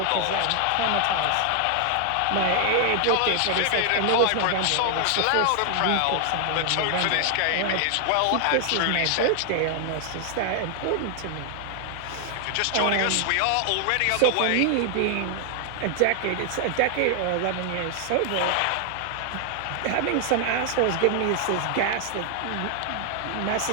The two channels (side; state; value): both; different; correlation 0.00